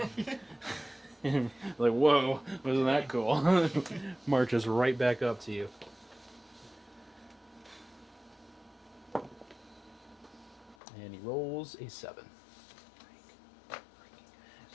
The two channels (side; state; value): right; drops out; at 10.8 s